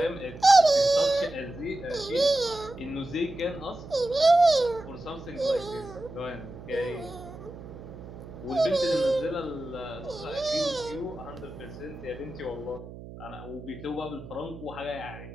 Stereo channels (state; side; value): noise; right; hum, 14 dB below the sound